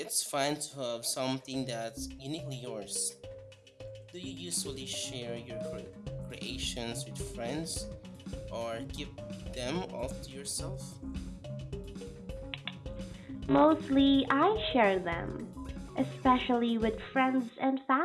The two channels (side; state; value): both; identical; correlation 1.00